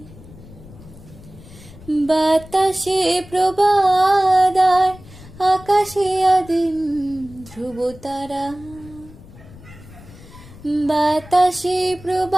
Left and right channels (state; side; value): noise; left; rumble, 20 dB below the sound